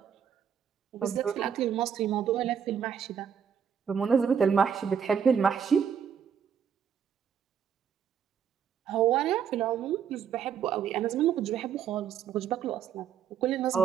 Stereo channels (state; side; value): quieter; left; 7.9 dB